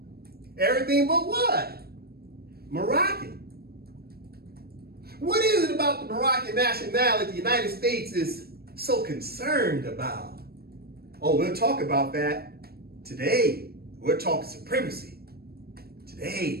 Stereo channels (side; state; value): left; late; 0.45 ms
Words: Everything but what? Moroccan. What is it about the Moroccan nationality the United States is so concerned about? Oh, we'll talk about that today. We're talking supremacy.